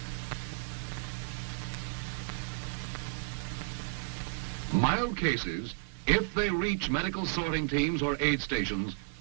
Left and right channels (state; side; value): silent; left; 56 dB below the other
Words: Mild cases, if they reach medical sorting teams or aid stations,